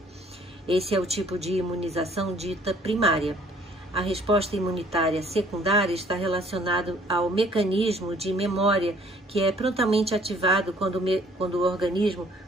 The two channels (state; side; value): normal; both; correlation 0.58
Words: Esse é o tipo de imunização dita primária. A resposta imunitária secundária está relacionada ao mecanismo de memória que é prontamente ativado quando o organismo